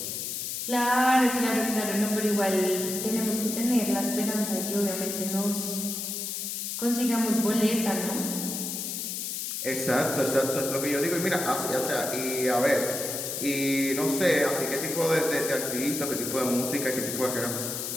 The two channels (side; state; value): left; noise; hiss, 4 dB below the sound